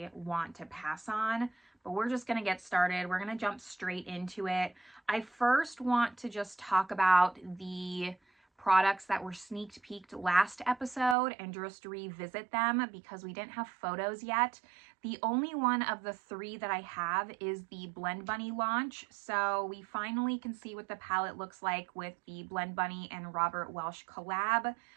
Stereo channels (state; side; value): drops out; left; at 11.2 s